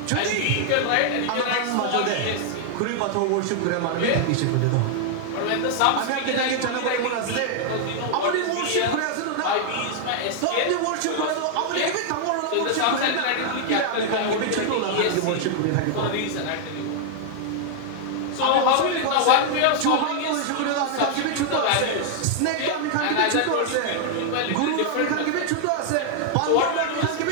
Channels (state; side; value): different; both; correlation 0.00